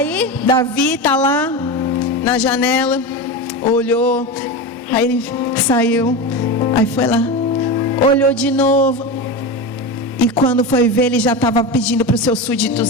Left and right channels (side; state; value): both; normal; correlation 0.21